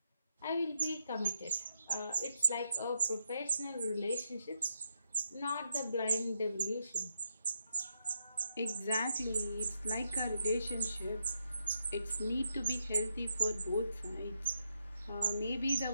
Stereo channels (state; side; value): inverted; both; correlation -0.81